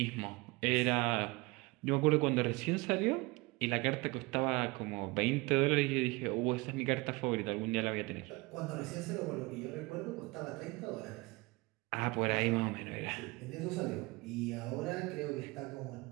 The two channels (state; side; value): quieter; left; 24.3 dB